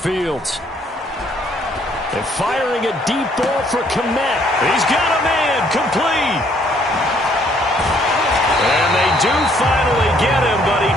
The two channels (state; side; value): normal; both; correlation 0.65